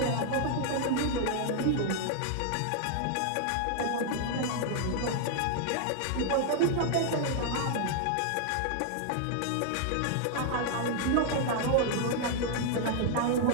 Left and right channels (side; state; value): both; different; correlation 0.00